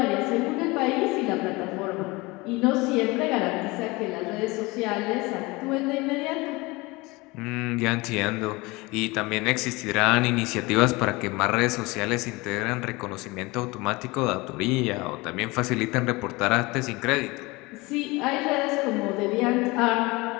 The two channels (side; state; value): right; quieter; 23.5 dB